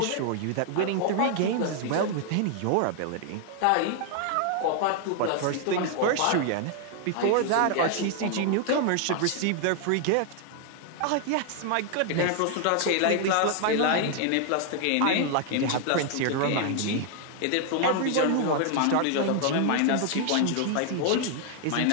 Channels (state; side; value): different; both; correlation 0.00